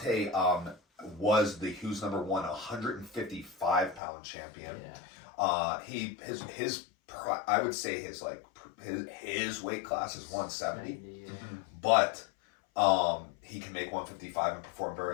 was the Who's Number 1 155 pound champion. Yeah. I would say his weight class is 170, Yeah. but he can make 155 and perform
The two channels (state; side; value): drops out; right; at 4.0 s